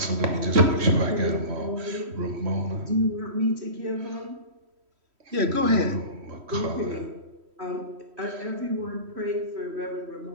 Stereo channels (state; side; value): late; left; 3.1 ms